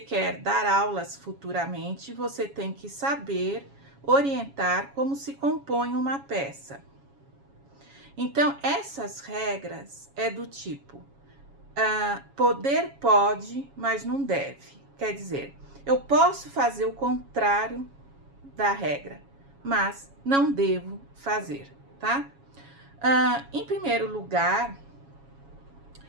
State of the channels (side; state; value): left; late; 7.2 ms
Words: dar aulas futuramente, você tem que saber orientar como se compõe uma peça. Então, essas regras é do tipo, poder pode, mas não deve. Quer dizer, eu posso fazer o contrário da regra, mas não devo fazer, tá? Em primeiro lugar,